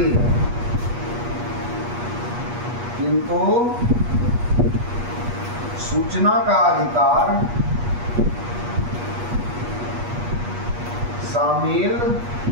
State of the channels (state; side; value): late; left; 8.3 ms